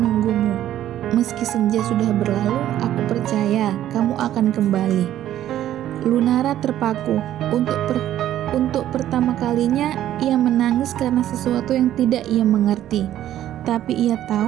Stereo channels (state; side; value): quieter; left; 12.3 dB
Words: Meski senja sudah berlalu, aku percaya kamu akan kembali. Lunara terpaku. Untuk pertama kalinya, ia menangis karena sesuatu yang tidak ia mengerti. Tapi ia